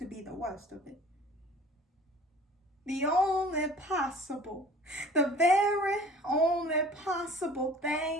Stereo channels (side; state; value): both; normal; correlation 0.47